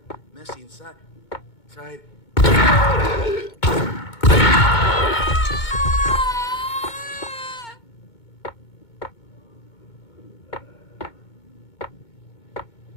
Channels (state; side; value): late; right; 2.2 ms